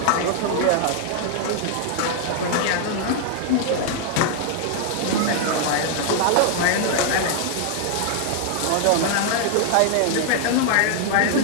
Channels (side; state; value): both; different; correlation 0.00